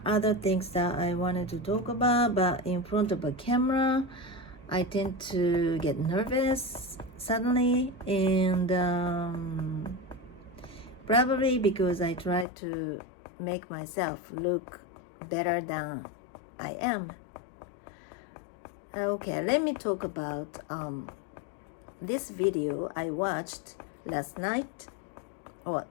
other things that I wanted to talk about, but in front of a camera I tend to get nervous suddenly, and probably because I try to make myself look better than I am. Okay, let me talk about this video I watched last night, or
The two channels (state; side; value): drops out; right; at 12.5 s